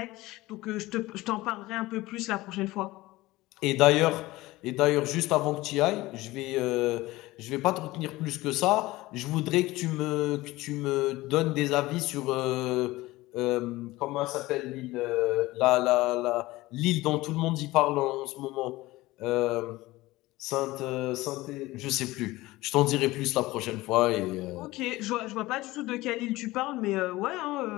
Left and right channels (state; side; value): quieter; right; 19.0 dB